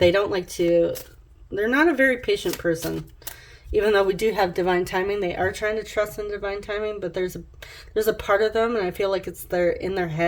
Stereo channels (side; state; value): both; identical; correlation 1.00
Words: don't like to... They're not a very patient person. Even though we do have divine timing, they are trying to trust in divine timing, but there's a part of them, and I feel like it's in their